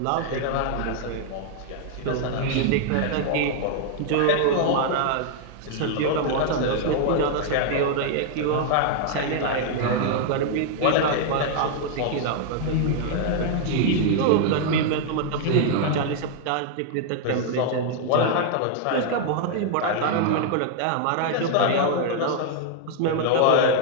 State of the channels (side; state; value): both; different; correlation -0.01